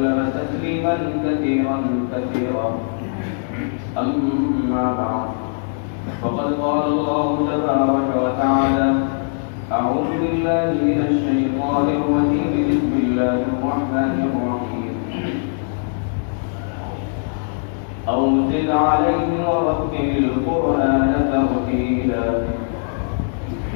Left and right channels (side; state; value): right; silent; digital silence